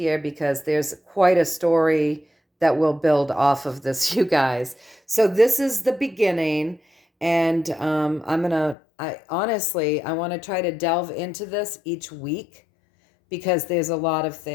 because there's quite a story that will build off of this, you guys. So this is the beginning, and I honestly want to try to delve into this each week because there's a lot of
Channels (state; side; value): drops out; right; at 8.8 s